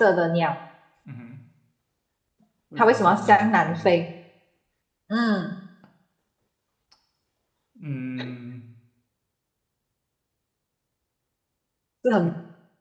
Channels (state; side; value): identical; both; correlation 1.00